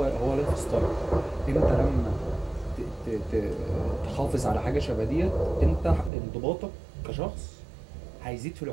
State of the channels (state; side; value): drops out; left; at 6.1 s